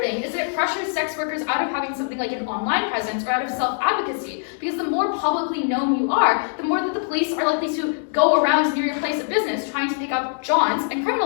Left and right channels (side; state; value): right; silent; digital silence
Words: thing is that it pressures sex workers out of having something like an online presence or out of self-advocacy, because the more publicly known you are, the more that the police police are likely to go around near your place of business trying to pick up Johns and